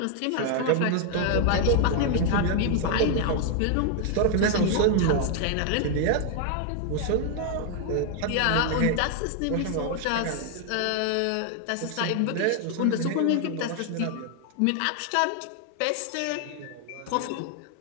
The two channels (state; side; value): different; both; correlation 0.00